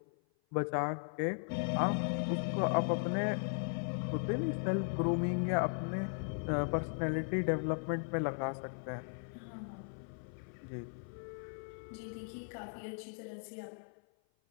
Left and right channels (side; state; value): right; silent; 53 dB below the other